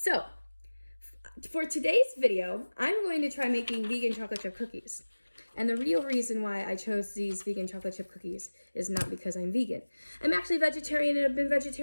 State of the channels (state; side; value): inverted; both; correlation -1.00